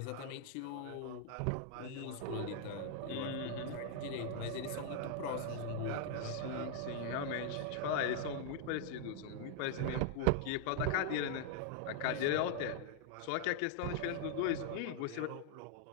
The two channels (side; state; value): both; different; correlation 0.00